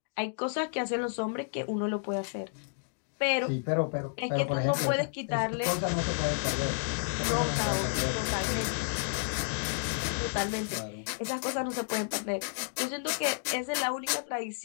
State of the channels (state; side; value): silent; right; digital silence